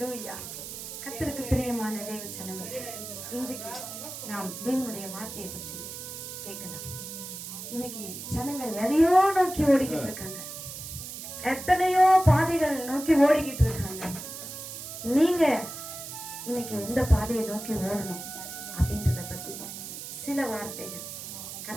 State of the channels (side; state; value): right; noise; hiss, 9 dB below the sound